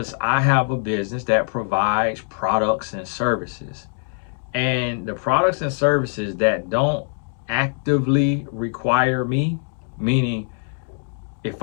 I have a business that provides products and services. And the products and services that don't actively require me, meaning if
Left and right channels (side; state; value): right; silent; 57 dB below the other